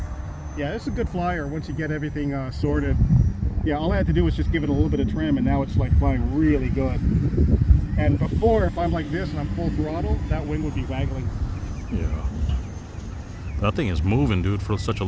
Yeah, it's a good flyer once you get everything sorted. Yeah, all I had to do was just give it a little bit of trim, and now it's like flying really good. And before, if I'm like this and I'm full throttle, that wing would be waggling. Yeah. That thing is moving, dude, for such a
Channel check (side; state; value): both; identical; correlation 1.00